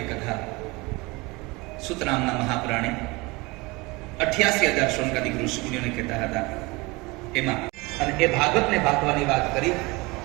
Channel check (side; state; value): left; quieter; 24.4 dB